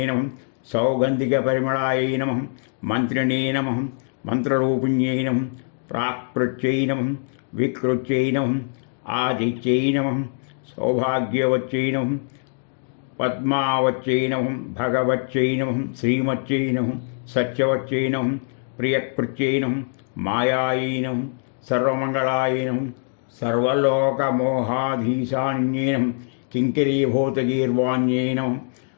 నమః, సౌగంధిక పరిమళాయై నమః, మంత్రిణే నమః, మంత్రరూపిణ్యై నమః, ప్రాక్పృత్యై నమః, వికృత్యై నమః, ఆదిత్యై నమః, సౌభాగ్యవత్యై నమః, పద్మావత్యై నమః, భగవత్యై నమః, శ్రీమత్యై నమః, సత్యవత్యై నమః, ప్రియకృత్యై నమః, మాయాయై నమః, సర్వమంగళాయై నమః, సర్వలోకమోహాధీశాన్యై నమః, కింకరీభూతగీర్వాణ్యై నమః,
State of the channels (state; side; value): silent; right; digital silence